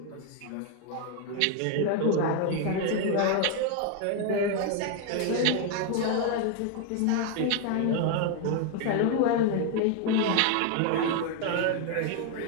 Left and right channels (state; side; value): different; both; correlation 0.01